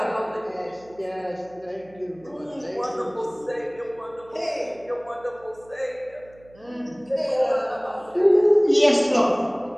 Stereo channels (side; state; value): right; noise; hum, 26 dB below the sound